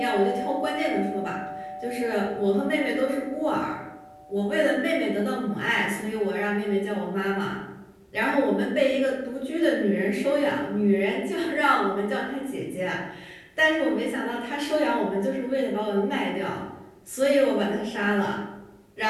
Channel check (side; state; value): both; identical; correlation 1.00